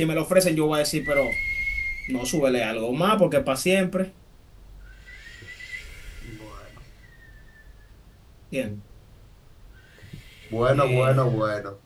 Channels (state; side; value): identical; both; correlation 1.00